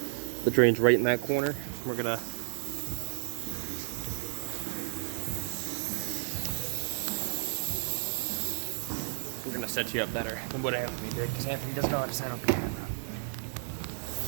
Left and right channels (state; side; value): silent; left; 56 dB below the other